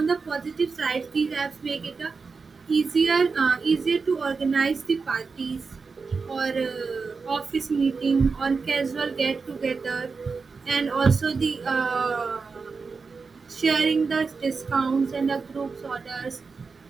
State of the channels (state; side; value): quieter; left; 4.7 dB